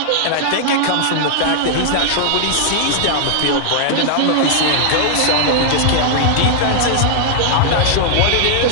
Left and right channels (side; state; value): both; different; correlation -0.01